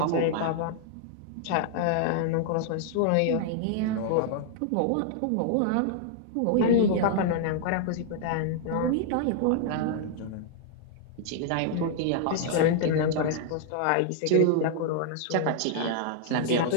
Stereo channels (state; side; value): different; both; correlation -0.01